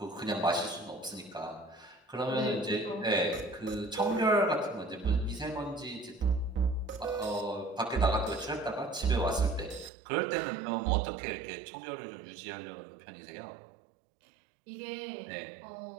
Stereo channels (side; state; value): left; drops out; at 9.9 s